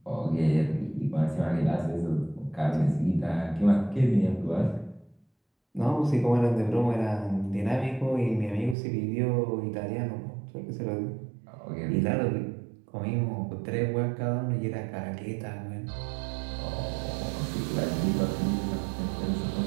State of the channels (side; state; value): left; drops out; at 8.8 s